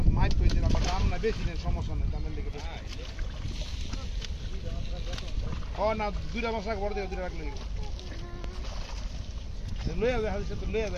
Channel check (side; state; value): both; identical; correlation 1.00